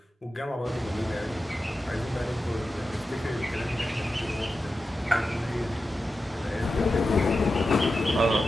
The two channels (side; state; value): both; normal; correlation 0.92